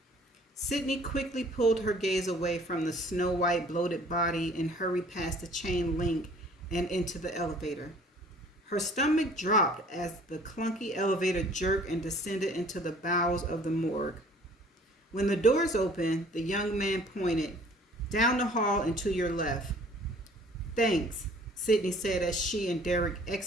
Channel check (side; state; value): both; normal; correlation 0.53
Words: Sydney quickly pulled her gaze away from the snow-white bloated body and hurried past the chain link and into the elevator. Her stomach dropped as the clunky elevator jerked and descended into the bowels of the morgue. When the doors opened, the young man pointed, "Down the hall and to your left." "Thanks," Sydney said as she and Derek